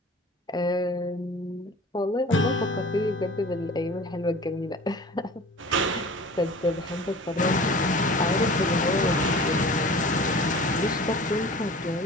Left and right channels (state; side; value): normal; both; correlation 0.42